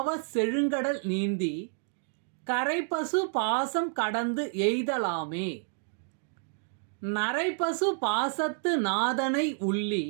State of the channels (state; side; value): silent; left; 58 dB below the other